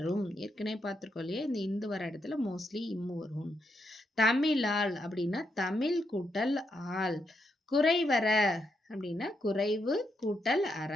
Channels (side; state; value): both; normal; correlation 0.80